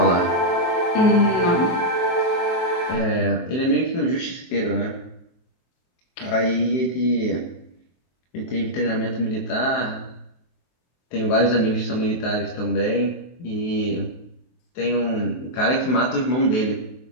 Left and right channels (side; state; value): right; late; 23 ms